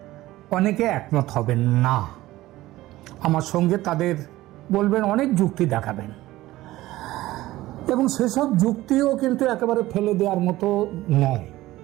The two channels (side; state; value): left; quieter; 16.8 dB